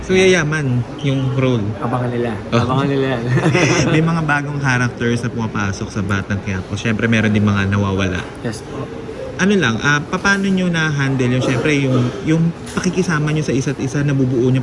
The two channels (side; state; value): both; identical; correlation 1.00